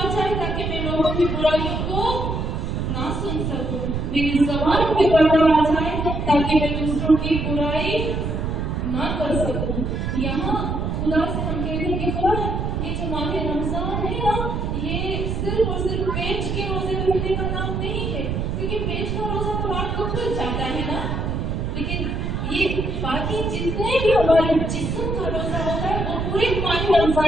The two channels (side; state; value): right; noise; rumble, 2 dB below the sound